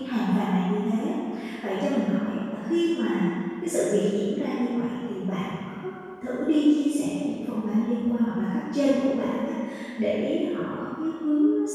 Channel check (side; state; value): both; identical; correlation 1.00